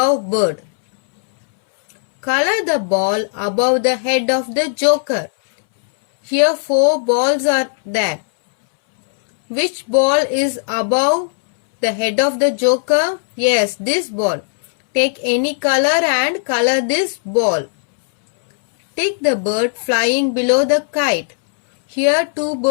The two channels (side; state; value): right; silent; 67 dB below the other